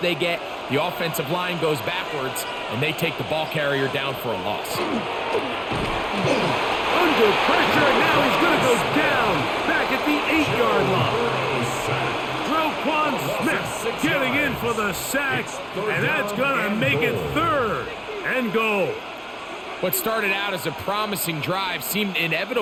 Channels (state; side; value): identical; both; correlation 1.00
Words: get. The offensive line goes backwards, and they take the ball carrier down for a loss. Under pressure, and now he's going to go down back at the 8-yard line. Roquan Smith getting in for the sack, and that's going to make it 3rd and goal. What started out as a promising drive seemed